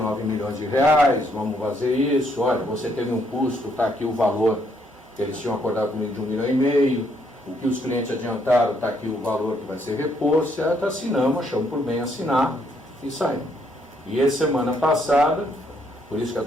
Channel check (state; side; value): normal; both; correlation 0.71